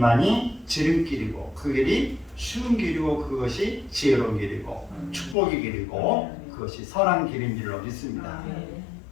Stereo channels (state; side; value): drops out; right; at 5.4 s